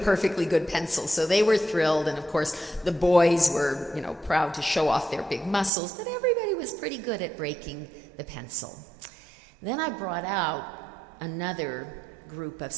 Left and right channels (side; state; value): left; drops out; at 5.7 s